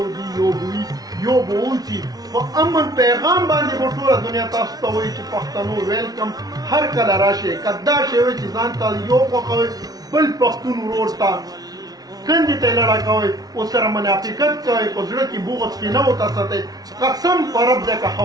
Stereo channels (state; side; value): late; left; 0.19 ms